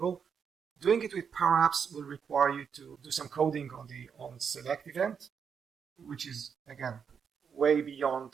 doing it with Power Apps will require you to do some coding on the onSelect event, which is, again, way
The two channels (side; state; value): left; quieter; 6.8 dB